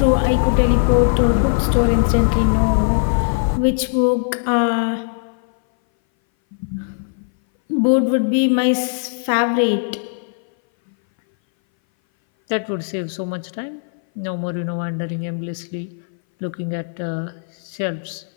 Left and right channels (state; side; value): silent; right; 60 dB below the other